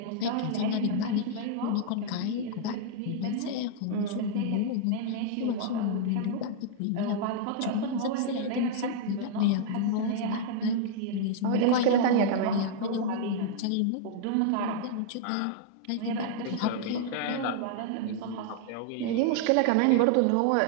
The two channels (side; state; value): both; different; correlation -0.01